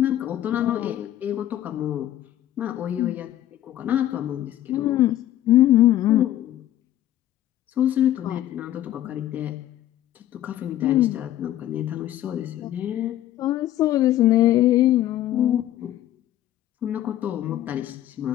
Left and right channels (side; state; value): right; quieter; 12.9 dB